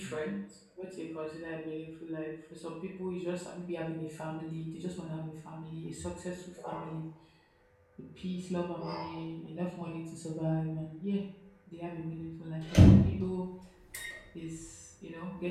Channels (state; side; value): identical; both; correlation 1.00